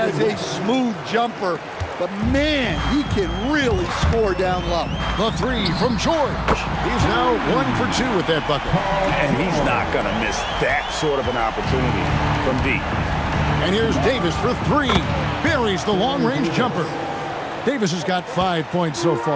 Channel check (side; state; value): both; identical; correlation 1.00